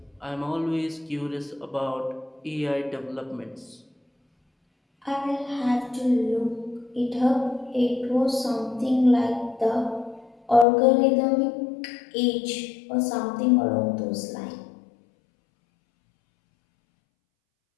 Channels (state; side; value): drops out; right; at 10.7 s